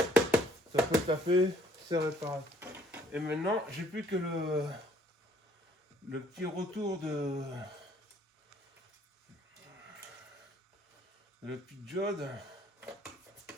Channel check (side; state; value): both; normal; correlation 0.62